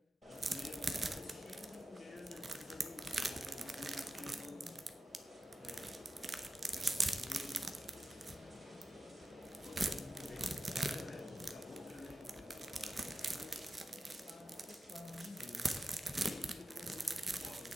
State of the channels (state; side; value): normal; both; correlation 0.92